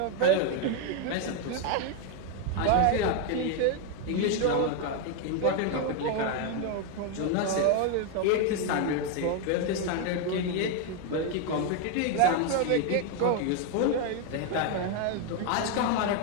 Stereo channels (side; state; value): both; different; correlation 0.01